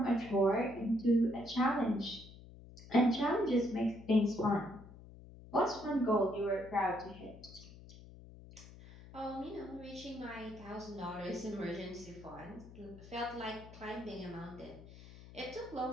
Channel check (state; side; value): noise; left; hum, 18 dB below the sound